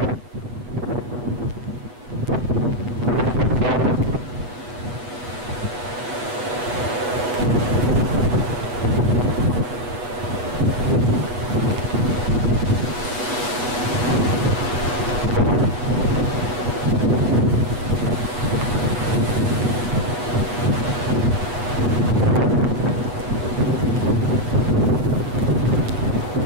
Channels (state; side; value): late; left; 8.1 ms